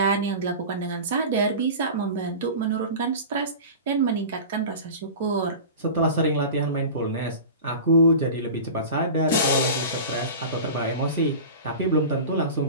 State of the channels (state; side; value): inverted; both; correlation -0.33